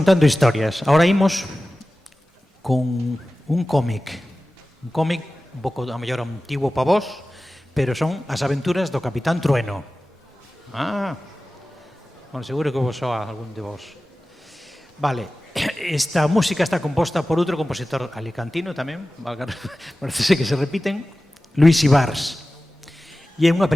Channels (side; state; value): both; normal; correlation 0.96